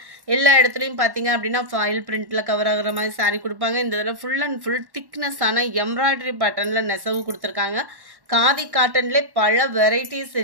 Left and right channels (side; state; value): left; late; 1.1 ms